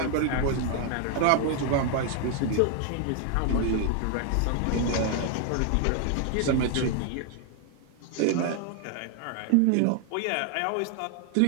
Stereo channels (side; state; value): both; different; correlation 0.00